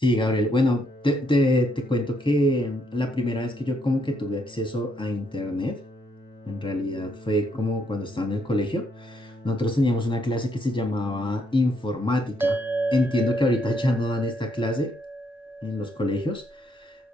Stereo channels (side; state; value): both; normal; correlation 0.73